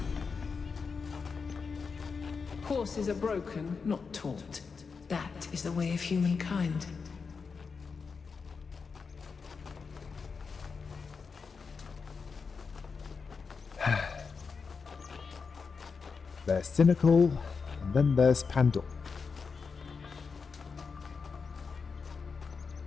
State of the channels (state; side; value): quieter; right; 5.2 dB